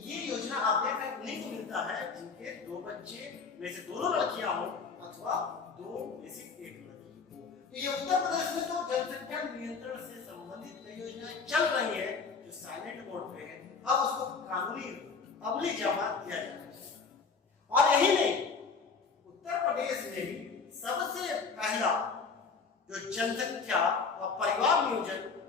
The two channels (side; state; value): right; quieter; 5.0 dB